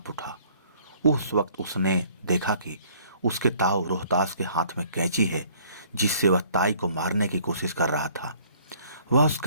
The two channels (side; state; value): both; inverted; correlation -0.58